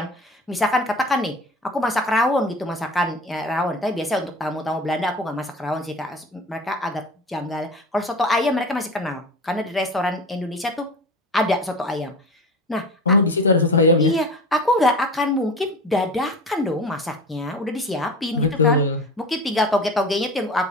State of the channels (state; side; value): normal; both; correlation 0.34